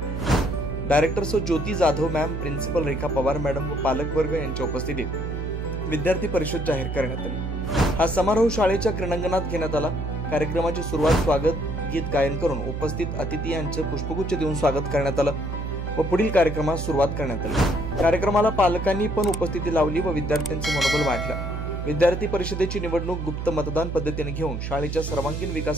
डायरेक्टर सो ज्योती जाधव मॅम, प्रिन्सिपल रेखा पवार मॅडम व पालक वर्ग यांच्या उपस्थितीत विद्यार्थी परिषद जाहीर करण्यात आली। हा समारोह शाळेच्या क्रीडांगणात घेण्यात आला। कार्यक्रमाची सुरुवात स्वागत गीत गायन करून उपस्थित अतिथी यांचे पुष्पगुच्छ देऊन स्वागत करण्यात आलं व पुढील कार्यक्रमास सुरुवात करण्यात आली। कार्यक्रमाला पालकांनी पण उपस्थिती लावली व विद्यार्थ्यांचे मनोबल वाढलं। विद्यार्थी परिषदेची निवडणूक गुप्त मतदान पद्धतीने घेऊन शाळेच्या सर्वांगीण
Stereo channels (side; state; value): right; noise; hum, 4 dB below the sound